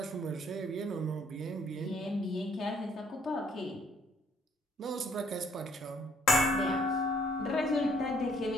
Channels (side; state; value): both; normal; correlation 0.64